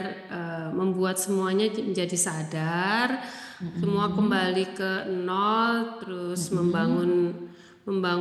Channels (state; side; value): identical; both; correlation 1.00